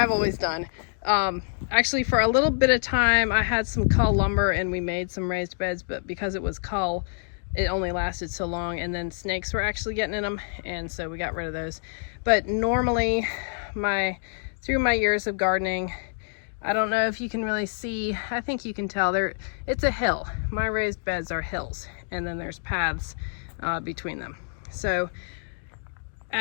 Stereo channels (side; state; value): right; silent; digital silence